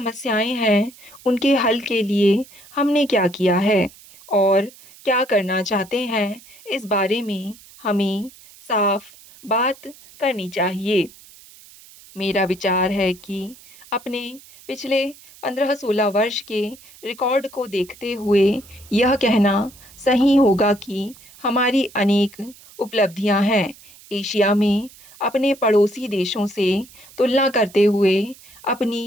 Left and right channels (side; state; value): right; noise; hiss, 23 dB below the sound